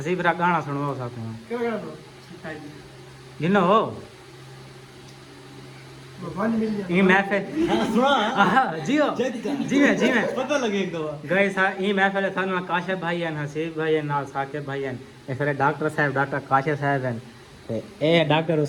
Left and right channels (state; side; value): identical; both; correlation 1.00